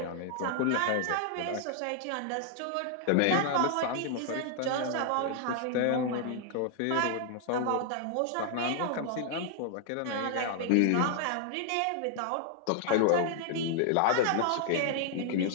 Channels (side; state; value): both; different; correlation 0.00